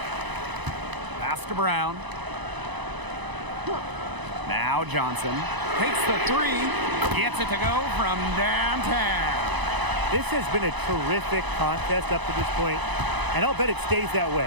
Pass to Brown. Now Johnson takes the 3. Gets it to go from downtown. This has been a terrific contest up to this point, and I'll bet it stays that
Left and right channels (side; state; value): left; late; 1.0 ms